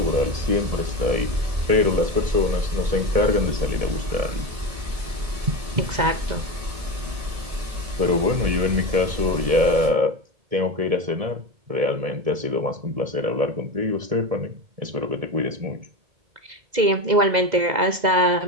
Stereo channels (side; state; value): left; late; 2.0 ms